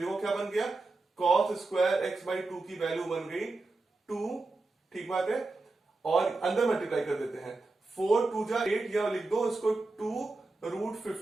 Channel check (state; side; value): quieter; left; 3.3 dB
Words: क्या बन गया, cos स्क्वायर x बाई 2 की वैल्यू बन गई 2। ठीक बात है। और अंदर मल्टीप्लाई कर देते हैं, 4 2 जा 8, या लिख दो इसको 2 रूट